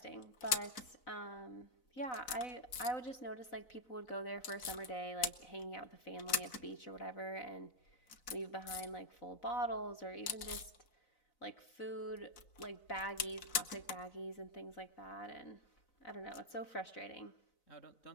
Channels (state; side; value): late; right; 4.0 ms